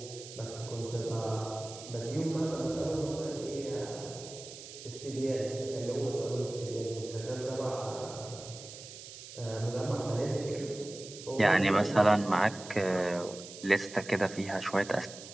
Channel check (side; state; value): right; noise; hiss, 14 dB below the sound